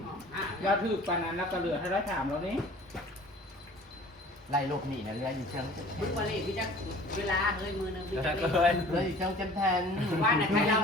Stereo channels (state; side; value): normal; both; correlation 0.47